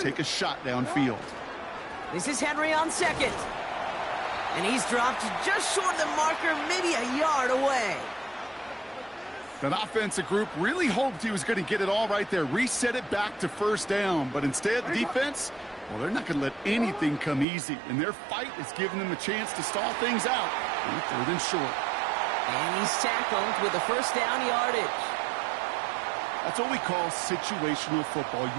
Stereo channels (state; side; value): drops out; left; at 17.4 s